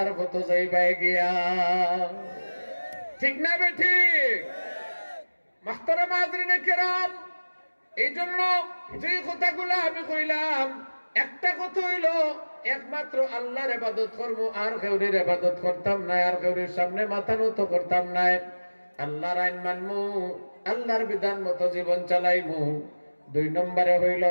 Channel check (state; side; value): inverted; both; correlation -1.00